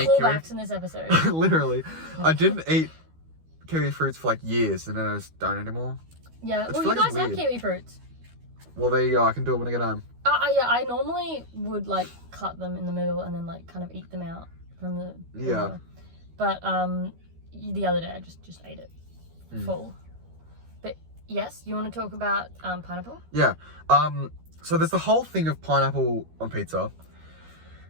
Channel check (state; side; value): late; left; 12 ms